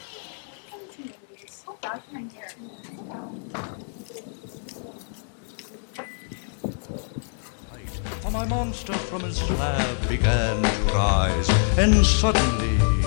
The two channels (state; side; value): silent; right; digital silence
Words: So bad for my hair. For my monster from his slab began to rise, and suddenly,